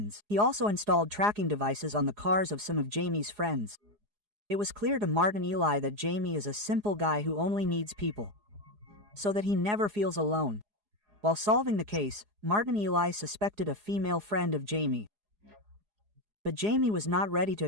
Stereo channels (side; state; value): left; late; 4.8 ms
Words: He also installed tracking devices on the cars of some of Jamie's friends. It was clear to Martin Eli that Jamie is a simple guy who only needs people, so that he never feels alone. While solving the case, Martin Eli suspected a female friend of Jamie. But Jamie was not ready to